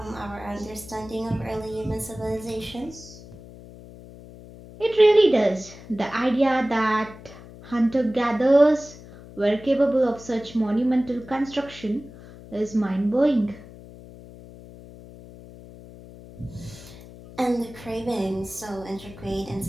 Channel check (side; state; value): left; noise; hum, 18 dB below the sound